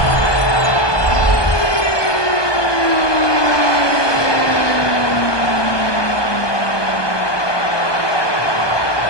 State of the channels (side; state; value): right; late; 1.2 ms